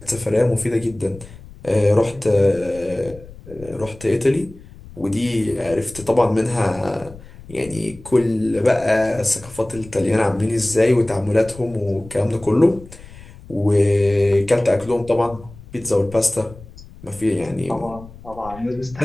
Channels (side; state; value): left; noise; rumble, 19 dB below the sound